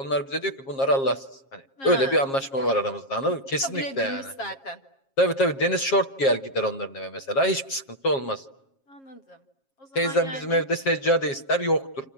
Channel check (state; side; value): late; right; 7.4 ms